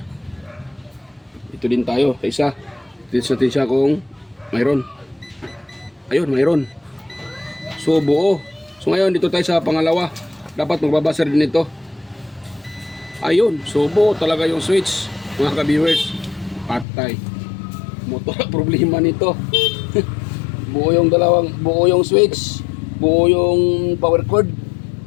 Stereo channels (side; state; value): right; drops out; at 16.9 s